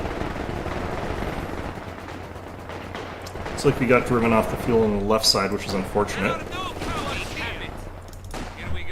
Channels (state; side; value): identical; both; correlation 1.00